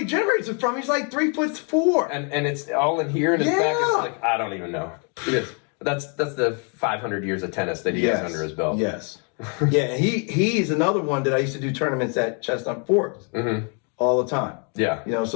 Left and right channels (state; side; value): quieter; right; 37.8 dB